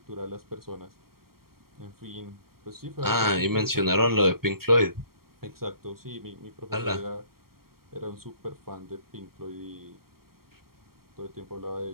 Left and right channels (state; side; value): late; left; 0.93 ms